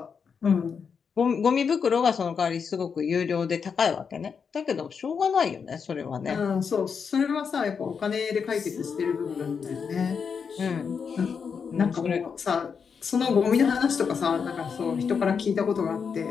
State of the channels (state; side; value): quieter; right; 6.2 dB